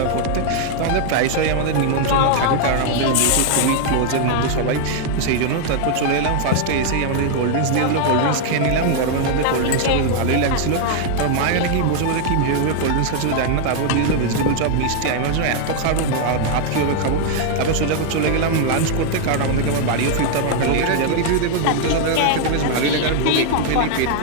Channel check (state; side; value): different; both; correlation 0.00